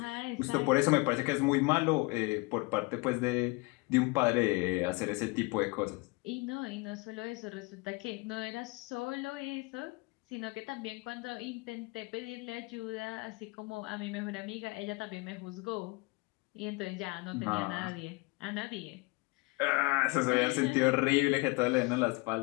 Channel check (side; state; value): right; quieter; 26.3 dB